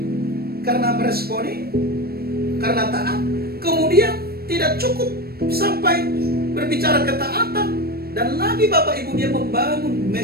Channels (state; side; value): late; left; 0.45 ms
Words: karena meresponi, karena taat, kemudian tidak cukup sampai berbicara ketaatan. Dan lagi Bapak Ibu, dia membangun